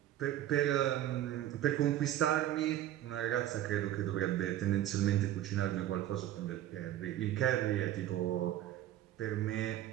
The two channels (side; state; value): left; quieter; 12.6 dB